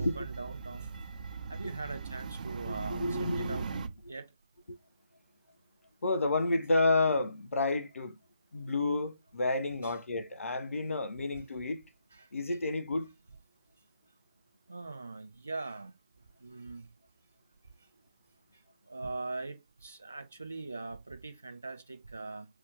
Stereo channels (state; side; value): inverted; both; correlation -0.78